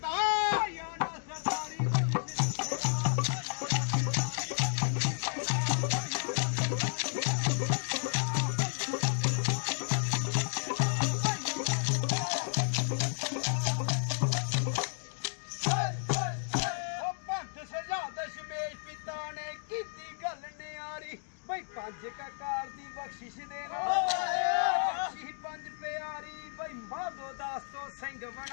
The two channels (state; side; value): silent; right; digital silence